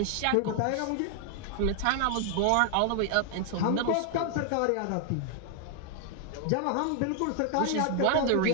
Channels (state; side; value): different; both; correlation 0.00